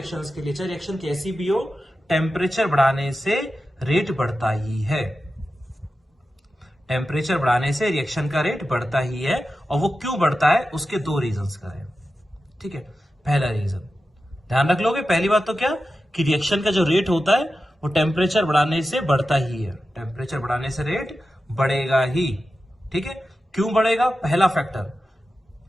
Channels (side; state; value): both; normal; correlation 0.92